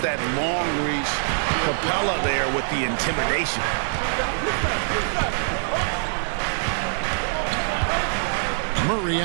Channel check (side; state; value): left; silent; digital silence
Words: that long reach. Capella there with the intimidation. Murray